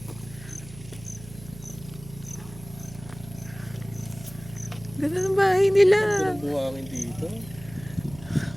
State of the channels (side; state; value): right; noise; hum, 16 dB below the sound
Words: Ganda ng bahay nila. Ang buhangin dito.